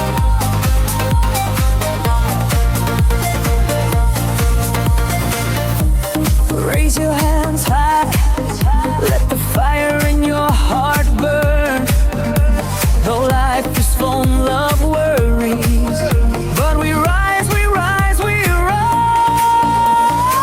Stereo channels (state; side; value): identical; both; correlation 1.00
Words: Raise your hands high, let the fire in your heart burn. Though life is full of worries, but we rise, we rise, we rise.